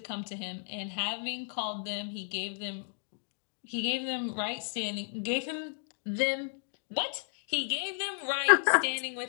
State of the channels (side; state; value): right; silent; digital silence